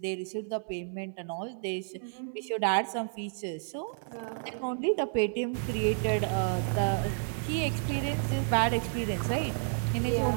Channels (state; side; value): silent; left; 57 dB below the other